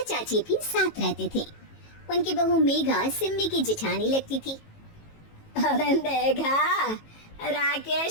चाची भी साथ रहते थे। उनकी बहू मेघा सिम्मी की जेठानी लगती थी। अरे मेघा,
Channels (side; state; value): right; late; 18 ms